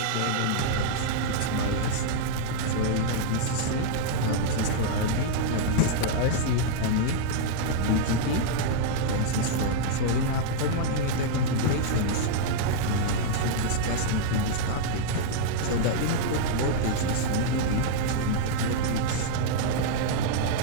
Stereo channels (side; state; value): both; different; correlation -0.01